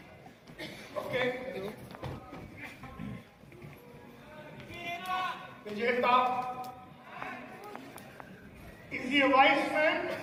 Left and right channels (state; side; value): identical; both; correlation 1.00